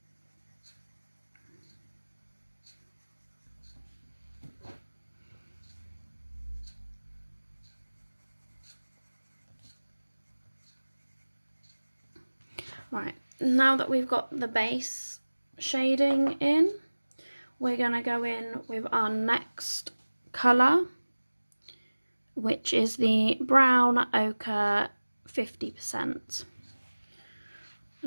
Right, now that we've got the base shading in, we're going to go in with our next colour, which is the brown ochre 50%.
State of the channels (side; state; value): both; inverted; correlation -1.00